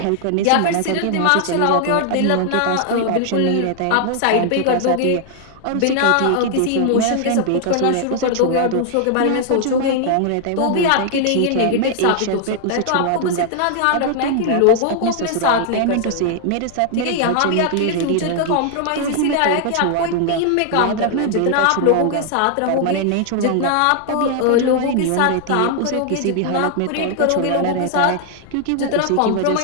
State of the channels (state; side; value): different; both; correlation 0.00